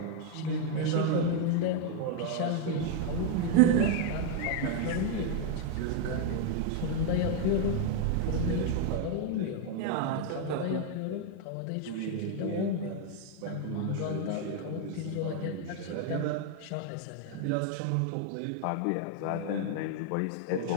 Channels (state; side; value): different; both; correlation 0.00